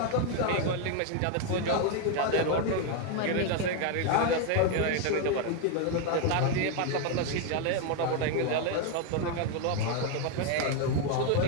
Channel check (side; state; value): both; different; correlation 0.01